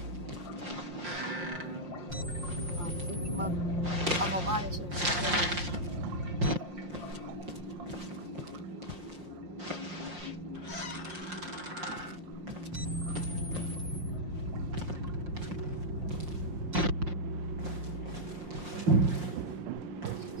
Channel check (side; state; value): left; late; 5.6 ms